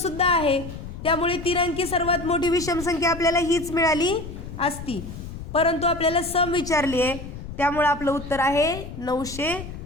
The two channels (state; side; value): noise; left; rumble, 11 dB below the sound